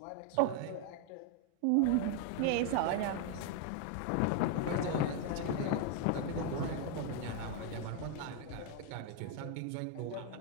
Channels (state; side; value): different; both; correlation 0.01